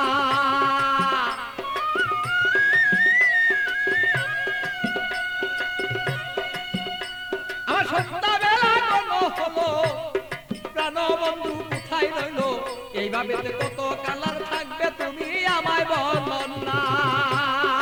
আমার সন্ধ্যাবেলা কোনো হলো প্রাণ বন্ধু কোথায় রইল, এই ভাবেতে কত কালার থাকবে তুমি আমায় বলন না,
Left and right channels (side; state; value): both; identical; correlation 1.00